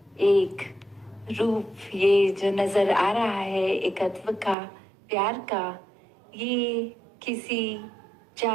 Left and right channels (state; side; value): drops out; left; at 4.5 s